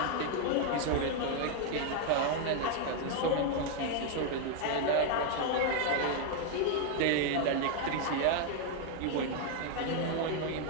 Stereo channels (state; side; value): different; both; correlation 0.00